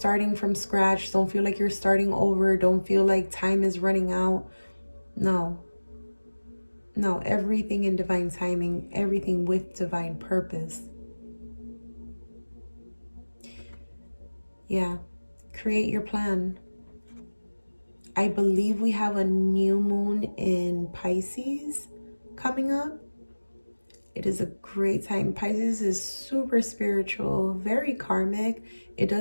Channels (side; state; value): both; inverted; correlation -1.00